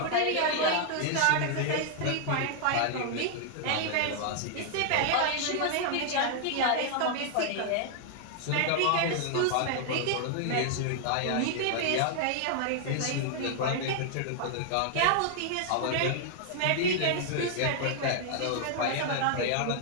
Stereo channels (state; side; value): different; both; correlation 0.00